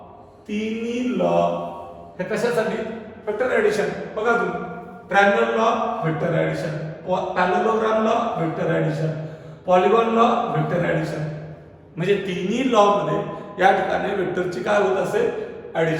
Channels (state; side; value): identical; both; correlation 1.00